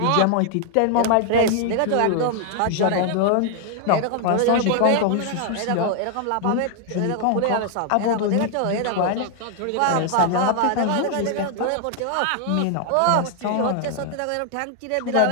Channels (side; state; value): both; different; correlation 0.00